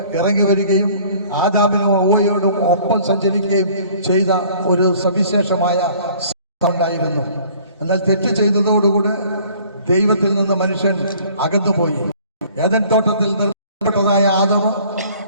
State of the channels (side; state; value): both; inverted; correlation -0.54